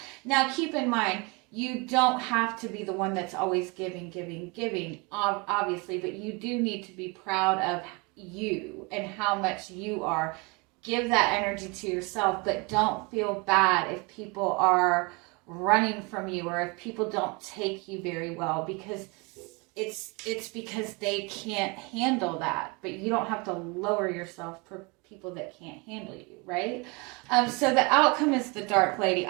Now, keep in mind, you don't have to be the one that's always giving, obviously, but you do need to be proud of you and how much you are. Give that energy to yourself, but don't feel bad if people are running from you, or if people don't take you very well, because it's because they can't handle that. But you don't have to lower yourself for people that can't handle you, right? So the outcome is the Dark Lady.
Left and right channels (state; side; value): quieter; left; 29.0 dB